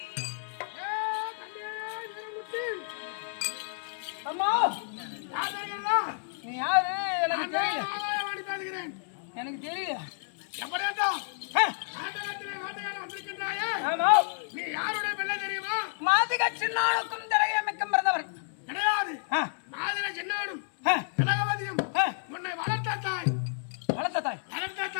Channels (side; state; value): right; silent; 58 dB below the other